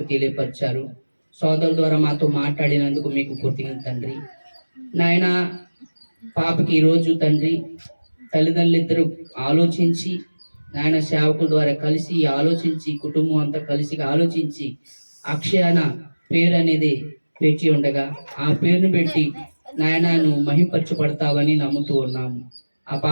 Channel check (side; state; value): both; inverted; correlation -1.00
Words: తెలియపరిచారు. సోదరుల ద్వారా మాతో మాట్లాడినందుకు మీకు కృతజ్ఞత తండ్రి. నాయన, పాపకి ఈరోజు తండ్రి తల్లిదండ్రులు ఇద్దరు ఆలోచించి నాయన సేవకుల ద్వారా కలిసి ఆలోచించి, కుటుంబం అంతా కలిసి ఆలోచించి అక్షయాన పేరు అనేది పెట్టి ఉండగా ఆ పేరును పెట్టి నాయన నువ్వు మహింపరచబడతావని నమ్ముతూ ఉన్నాము. ఆ